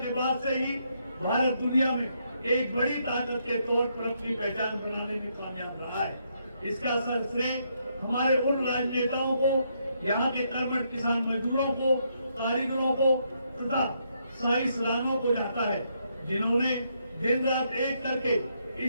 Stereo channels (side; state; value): both; inverted; correlation -0.76